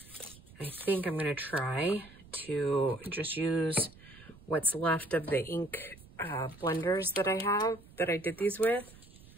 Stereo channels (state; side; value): noise; right; rumble, 22 dB below the sound